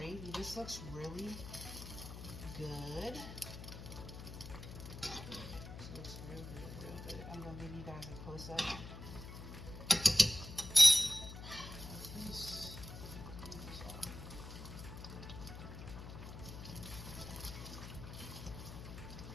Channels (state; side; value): noise; left; hum, 11 dB below the sound